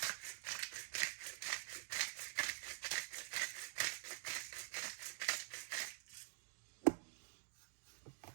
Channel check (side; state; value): left; silent; digital silence